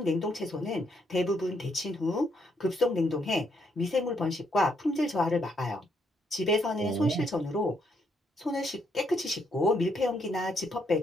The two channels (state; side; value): normal; both; correlation 0.74